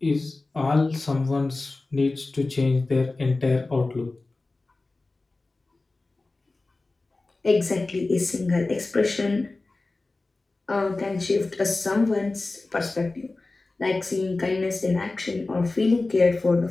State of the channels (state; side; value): quieter; right; 3.3 dB